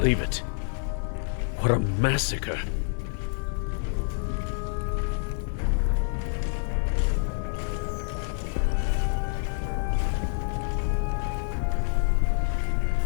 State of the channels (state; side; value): silent; right; 58 dB below the other